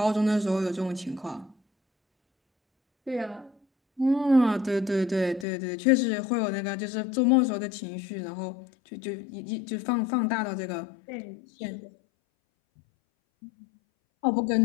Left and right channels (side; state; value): right; drops out; at 5.5 s